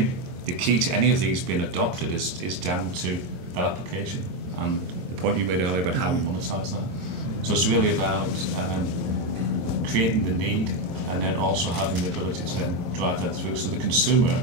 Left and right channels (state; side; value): late; left; 22 ms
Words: the key to any of these being adopted is down to that application and the point you made earlier about how we monetize that. So it's really about creating the need and then also having the ability to then drive that through. So the consumer,